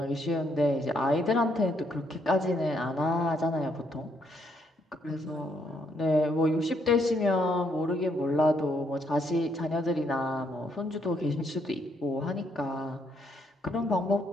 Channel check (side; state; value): both; normal; correlation 0.73